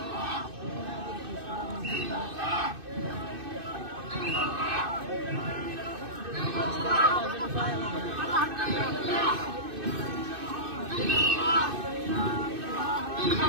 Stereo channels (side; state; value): left; late; 2.6 ms